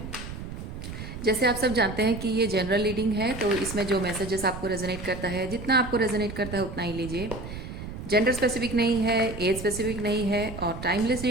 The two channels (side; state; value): right; noise; rumble, 9 dB below the sound